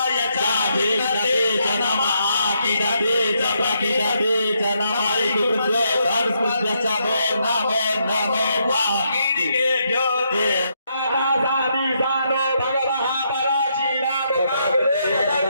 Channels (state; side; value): inverted; both; correlation -0.78